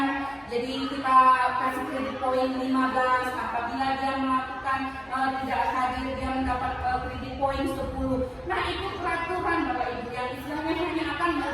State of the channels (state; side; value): identical; both; correlation 1.00